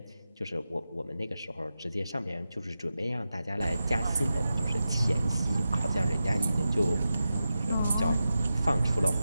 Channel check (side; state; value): both; inverted; correlation -0.91